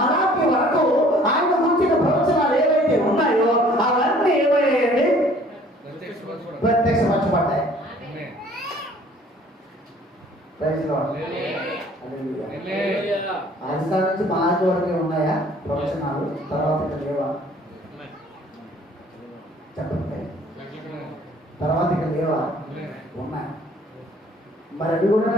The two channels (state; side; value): normal; both; correlation 0.55